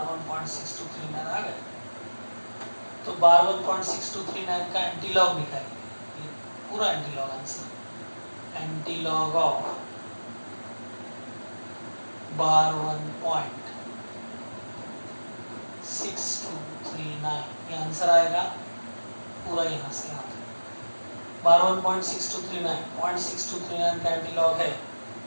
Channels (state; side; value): inverted; both; correlation -1.00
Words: 1.6239 आ गया, तो बार 1.6239 का एंटीलॉग निकालेंगे, ये पूरा antilog answer, antilog of bar 1.6239 ये आंसर आएगा पूरा, यहाँ से आता है बार 1.6239 का एंटीलॉग है